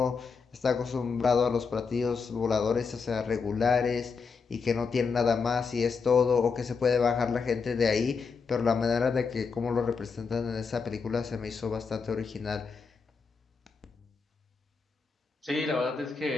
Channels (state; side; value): quieter; right; 5.2 dB